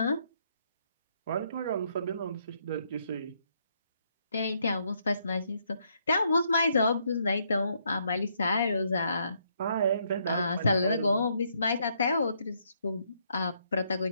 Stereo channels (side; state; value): both; inverted; correlation -0.72